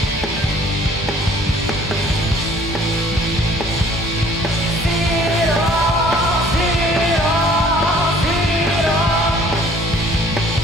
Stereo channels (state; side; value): normal; both; correlation 0.55